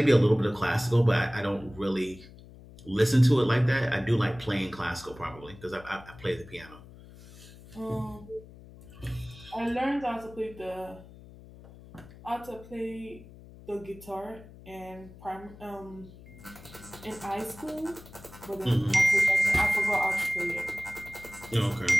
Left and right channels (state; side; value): noise; left; hum, 19 dB below the sound